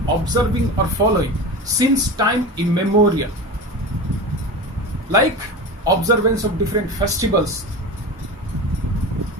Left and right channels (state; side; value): normal; both; correlation 0.28